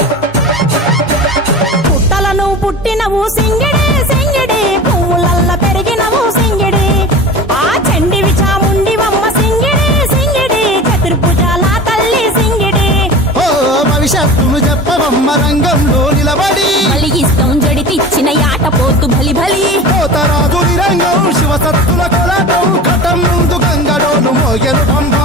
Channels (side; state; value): both; normal; correlation 0.35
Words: పుట్టినవు సింగిడి సింగిడి, పువ్వులల్ల పెరిగినవు సింగిడి, ఆ చండివి చాముండివమ్మ సింగిడి సింగిడి, చతుర్భుజాల తల్లి సింగిడి. ఓ భవిష్యత్తును చెప్పవమ్మ రంగంలో నిలబడి, బలిగిస్తాం జడితిచ్చిన యాట పోతు బలి బలి, పోతరాజు రంగం శివసత్తుల కొలటం, ఘటం ముందు గంగడోలు మోగెను